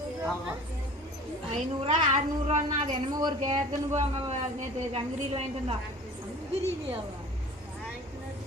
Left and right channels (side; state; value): both; normal; correlation 0.43